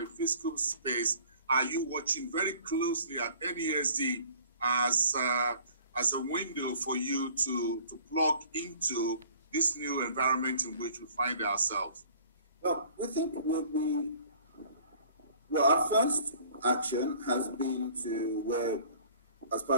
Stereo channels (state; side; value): inverted; both; correlation -0.51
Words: fiscal space are you watching very closely at NASD as a window for you to plug into this new environment in which we find ourselves? Well, we think our first action has been to where, as